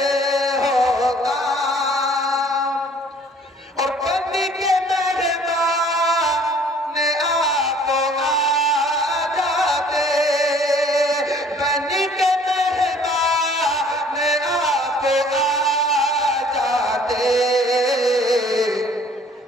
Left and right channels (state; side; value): normal; both; correlation 0.55